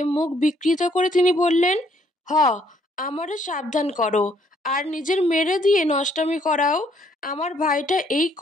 মুখ বিকৃত করে তিনি বললেন, হ, আমারে সাবধান করো, আর নিজের মেরে দিয়ে নষ্টামি করাও। আমার ভাইটা এই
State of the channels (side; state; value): both; normal; correlation 0.67